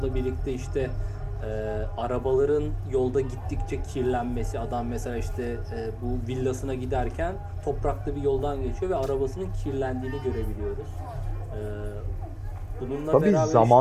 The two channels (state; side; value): identical; both; correlation 1.00